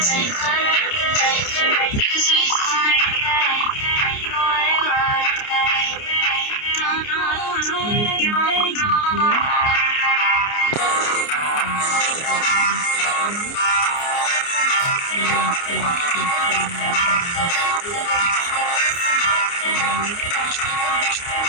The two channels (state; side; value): late; right; 29 ms